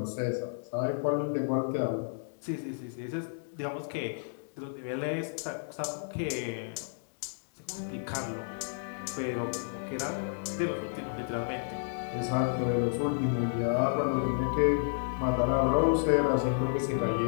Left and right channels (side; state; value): right; silent; digital silence